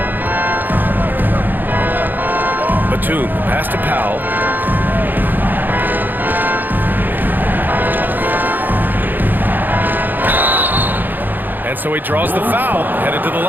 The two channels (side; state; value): left; late; 0.089 ms